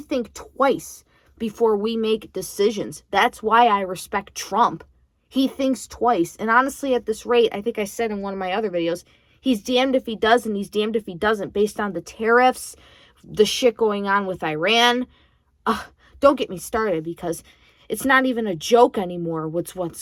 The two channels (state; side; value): identical; both; correlation 1.00